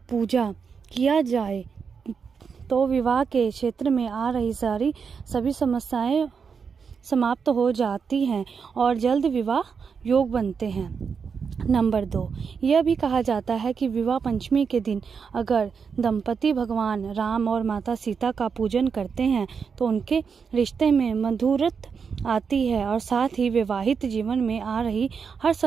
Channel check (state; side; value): quieter; left; 6.0 dB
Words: किया जाए तो विवाह के क्षेत्र में आ रही सभी समस्याएं समाप्त हो जाती हैं और जल्द विवाह योग बनते हैं। नंबर 2, यह भी कहा जाता है कि विवाह पंचमी के दिन अगर दंपति भगवान राम और माता सीता का पूजन करते हैं तो उनके रिश्ते में मधुरता आती है और साथ ही वैवाहिक जीवन में आ रही हर